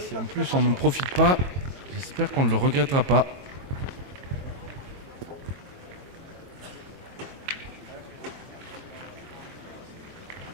en plus on n'en profite pas, j'espère qu'on ne le regrettera pas.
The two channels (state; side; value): late; left; 22 ms